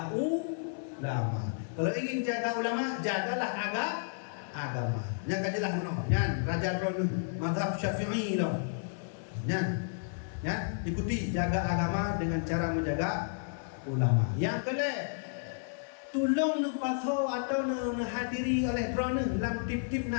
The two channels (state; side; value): silent; right; 56 dB below the other